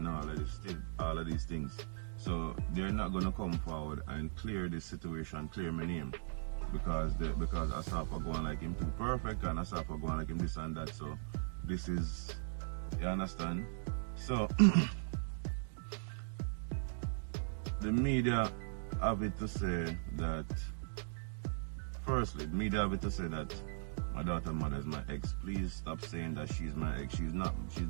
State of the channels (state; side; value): silent; left; digital silence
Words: all of these things. So they're not going to come forward and clear this situation, clear my name, because Asafa going like him too perfect and Asafa going like him this and that. So this is, you understand? So the media have it to say that, firstly, the media have it to say that my daughter's mother is my ex. Please stop saying that she's my ex. She's not